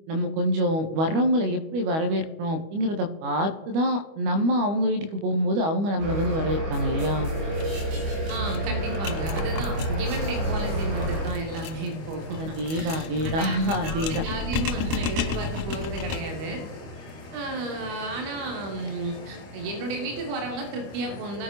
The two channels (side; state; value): left; late; 25 ms